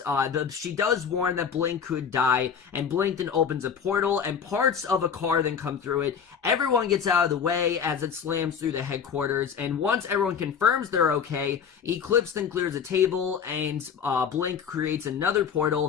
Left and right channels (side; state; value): right; quieter; 7.1 dB